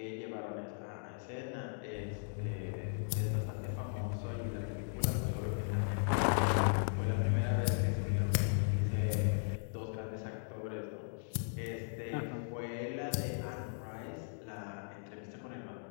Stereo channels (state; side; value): silent; right; digital silence